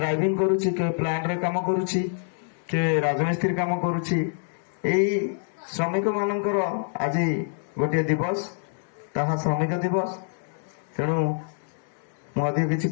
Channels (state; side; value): silent; right; digital silence